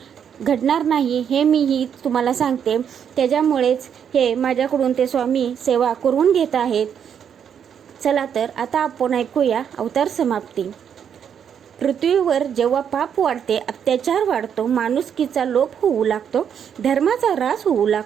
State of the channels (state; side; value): quieter; left; 8.1 dB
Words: घडणार नाही, हे मीही तुम्हाला सांगते। त्याच्यामुळेच हे माझ्याकडून ते स्वामी सेवा करून घेत आहेत। चला तर आता आपण ऐकूया अवतार समाप्ती। पृथ्वीवर जेव्हा पाप वाढते, अत्याचार वाढतो, माणुसकीचा लोप होऊ लागतो, धर्माचा ऱ्हास होऊ